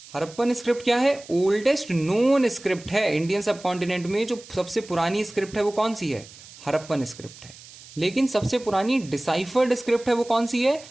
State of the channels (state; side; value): noise; right; hiss, 19 dB below the sound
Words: Harappan script क्या है? ओल्डेस्ट नोन स्क्रिप्ट है इंडियन सबकॉन्टिनेंट में। जो सबसे पुरानी स्क्रिप्ट है वो कौन सी है? हरप्पन स्क्रिप्ट है। लेकिन सबसे पुरानी डिसाइफर्ड स्क्रिप्ट है वो कौन सी है?